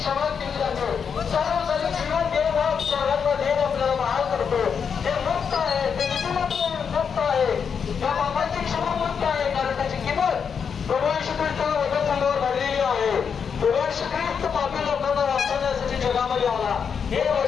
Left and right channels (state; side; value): quieter; right; 6.7 dB